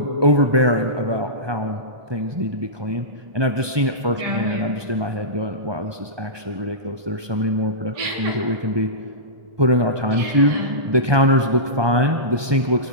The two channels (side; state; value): left; late; 1.2 ms